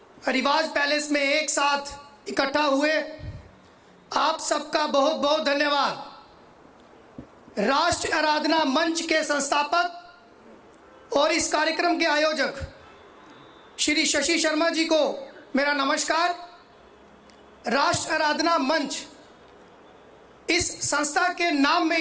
रिवाज पैलेस में एक साथ इकट्ठा हुए, आप सबका बहुत बहुत धन्यवाद। राष्ट्र आराधना मंच के संस्थापक और इस कार्यक्रम के आयोजक श्री शशि शर्मा जी को मेरा नमस्कार। राष्ट्र आराधना मंच, इस संस्था के नाम में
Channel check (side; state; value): both; identical; correlation 1.00